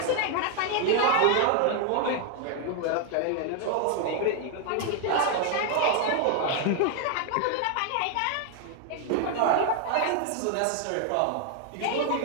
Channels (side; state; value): both; different; correlation 0.01